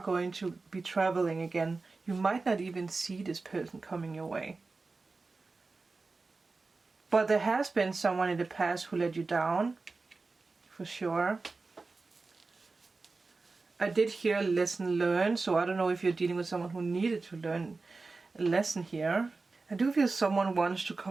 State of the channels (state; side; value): quieter; left; 3.8 dB